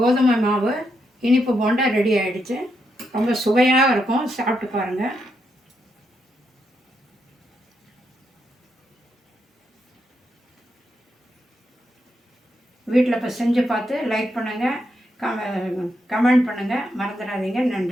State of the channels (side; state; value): both; normal; correlation 0.81